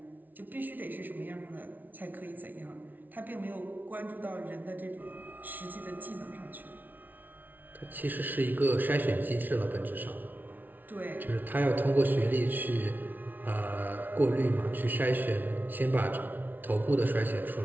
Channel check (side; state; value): left; late; 0.083 ms